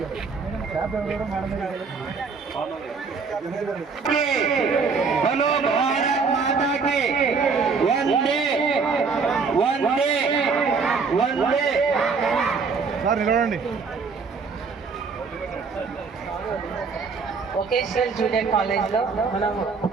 बोलो भारत माता की वंदे वंदे वंदे. సార్ నిలబడండి. వొకేషనల్ జూనియర్ కాలేజ్లో మనము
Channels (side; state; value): left; quieter; 5.0 dB